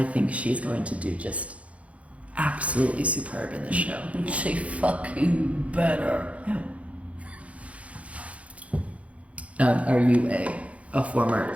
think she's going to do just absolutely superb in the show. She fucking better. Are you a former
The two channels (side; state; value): left; late; 0.064 ms